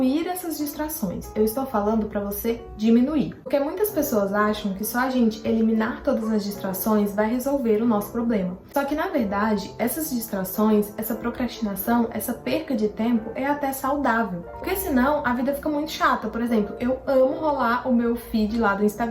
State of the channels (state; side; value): identical; both; correlation 1.00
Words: essas distrações, eu estou falando para você diminuir. Porque muitas pessoas acham que só a gente eliminar todas as distrações vai resolver o nosso problema. Só que, na verdade, essas distrações, essa procrastinação, essa perca de tempo é até saudável. Porque senão a vida fica muito chata. Por exemplo, eu amo rolar o meu feed lá do